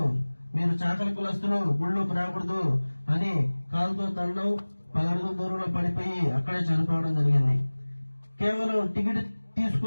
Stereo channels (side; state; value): both; inverted; correlation -1.00